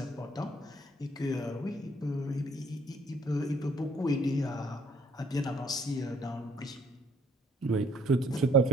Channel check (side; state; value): both; normal; correlation 0.63